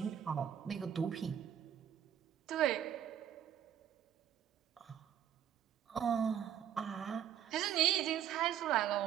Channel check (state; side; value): quieter; left; 9.8 dB